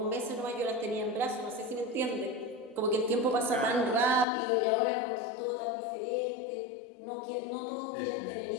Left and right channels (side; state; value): right; drops out; at 4.2 s